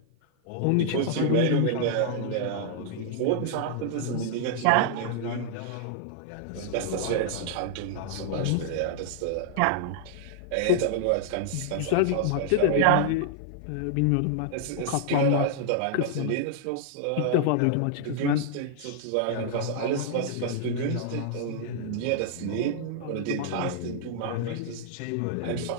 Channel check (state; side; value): different; both; correlation -0.01